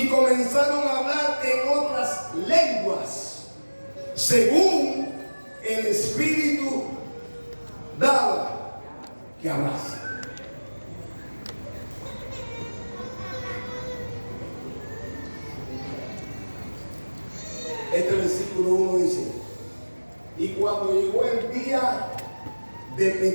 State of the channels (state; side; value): inverted; both; correlation -1.00